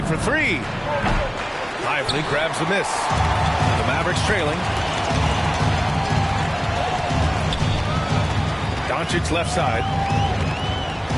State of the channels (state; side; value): identical; both; correlation 1.00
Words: for 3. Lively grabs the miss. The Mavericks trailing. Doncic left side.